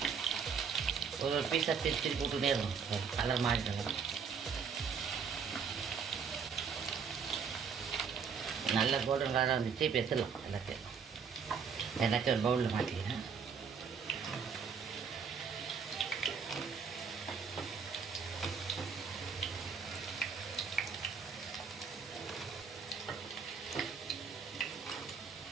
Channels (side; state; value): left; quieter; 6.2 dB